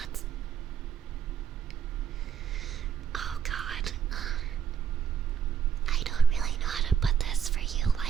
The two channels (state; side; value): quieter; left; 8.0 dB